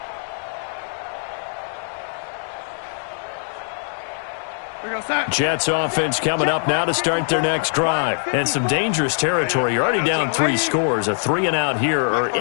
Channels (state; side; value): silent; right; digital silence